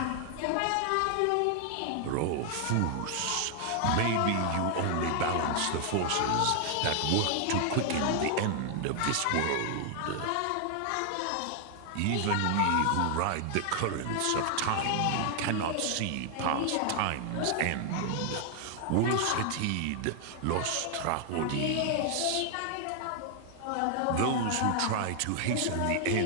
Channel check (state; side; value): different; both; correlation 0.00